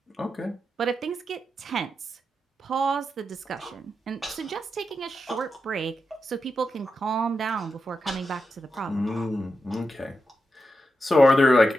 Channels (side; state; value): both; normal; correlation 0.88